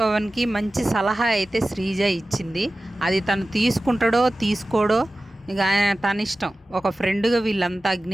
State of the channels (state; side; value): normal; both; correlation 0.96